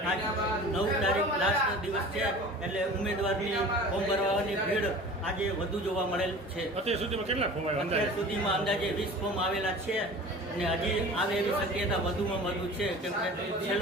આજ 9 તારીખ લાસ્ટ દિવસ છે, એટલે ઉમેદવારની ફોર્મ ભરવાની ભીડ આજે વધુ જોવા મળેલ છે. અત્યાર સુધીમાં કેટલા ફોર્મ આવ્યા? અત્યાર સુધીમાં અંદાજે 20 ફોર્મ આવેલા છે અને હજી આવે એવી શક્યતા વધુમાં વધુ છે, કેમ કે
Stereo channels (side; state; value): both; normal; correlation 0.40